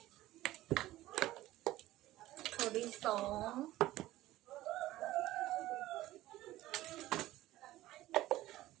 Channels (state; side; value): quieter; left; 16.0 dB